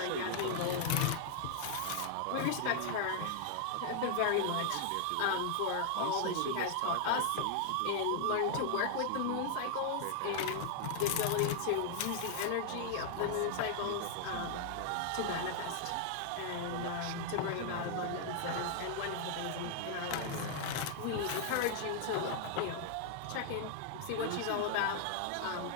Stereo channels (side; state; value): both; different; correlation 0.00